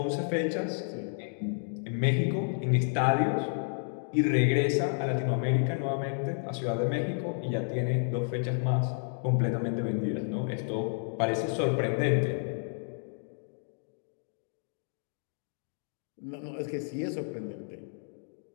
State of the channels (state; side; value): silent; right; digital silence